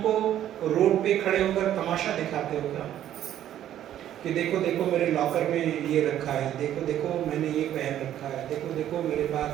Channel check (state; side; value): quieter; left; 11.5 dB